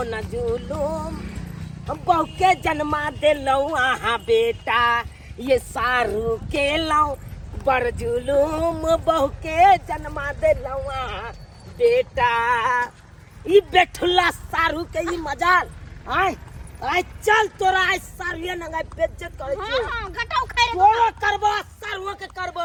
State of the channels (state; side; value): identical; both; correlation 1.00